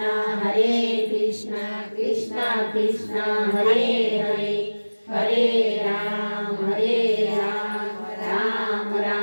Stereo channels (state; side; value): inverted; both; correlation -1.00